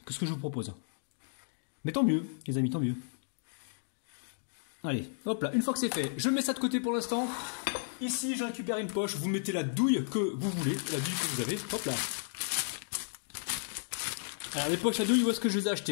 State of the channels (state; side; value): silent; right; digital silence